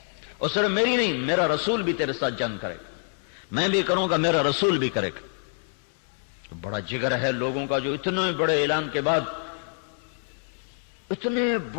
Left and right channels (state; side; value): silent; right; 61 dB below the other